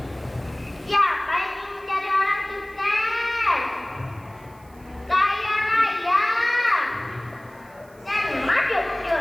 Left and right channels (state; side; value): noise; right; hiss, 29 dB below the sound